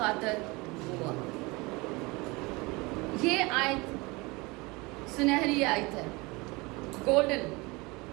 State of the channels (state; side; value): quieter; left; 24.7 dB